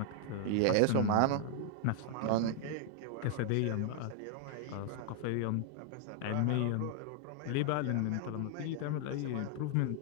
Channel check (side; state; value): both; different; correlation 0.00